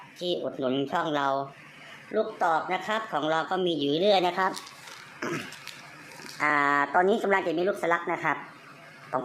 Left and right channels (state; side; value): identical; both; correlation 1.00